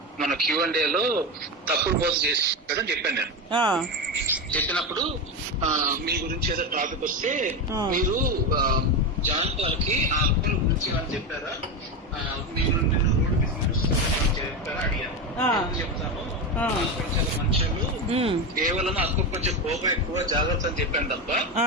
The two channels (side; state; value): both; normal; correlation 0.16